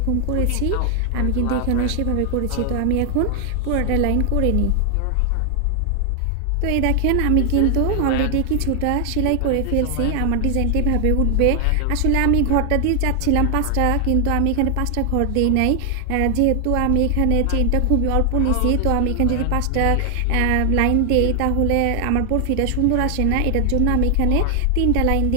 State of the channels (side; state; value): both; different; correlation 0.00